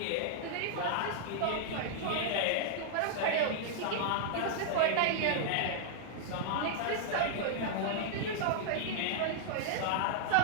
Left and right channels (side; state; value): both; different; correlation -0.01